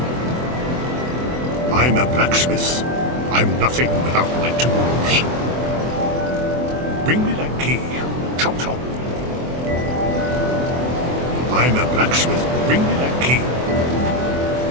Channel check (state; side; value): late; left; 24 ms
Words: I'm a blacksmith. I'm nothing without my tools. Bring me that key. Chop chop. I'm a blacksmith. Bring me that key.